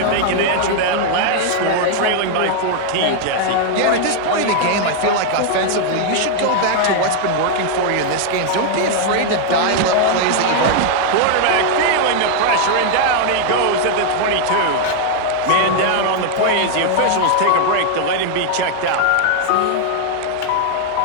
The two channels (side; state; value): both; different; correlation 0.00